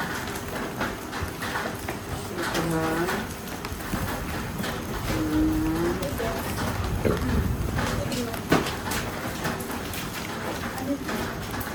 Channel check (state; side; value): identical; both; correlation 1.00